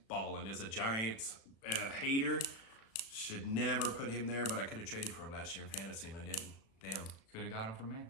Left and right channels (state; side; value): late; right; 36 ms